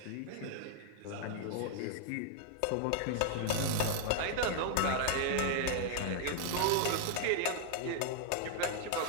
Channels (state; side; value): different; both; correlation 0.00